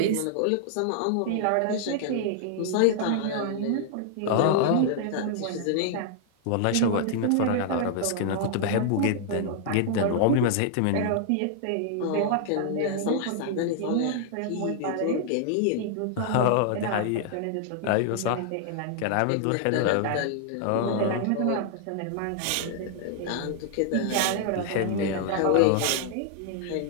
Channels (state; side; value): different; both; correlation -0.01